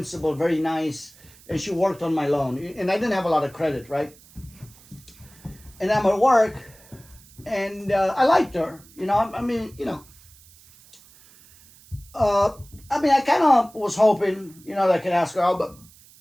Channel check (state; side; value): noise; right; hiss, 25 dB below the sound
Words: very nice. And she worked on my loan. And I didn't have a lot of credit, right? And I'm at work, and I liked her. I kind of was hoping, that I could ask her out, but,